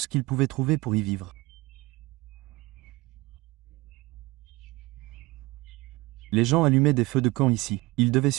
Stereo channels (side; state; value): left; quieter; 21.2 dB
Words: qu'ils pouvaient trouver pour y vivre. Les gens allumaient des feux de camp ici. Ils devaient